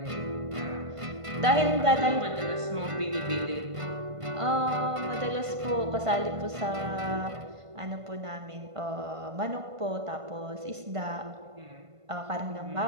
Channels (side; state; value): left; late; 1.5 ms